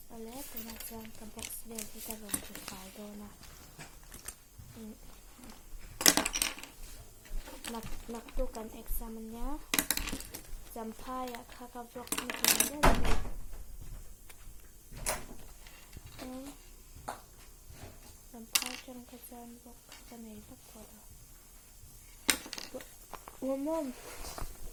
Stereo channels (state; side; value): identical; both; correlation 1.00